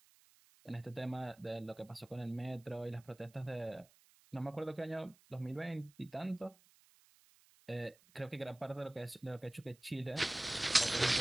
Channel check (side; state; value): right; noise; hiss, 28 dB below the sound